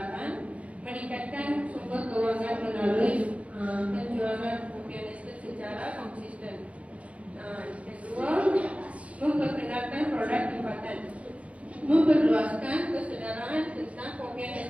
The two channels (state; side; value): late; left; 0.064 ms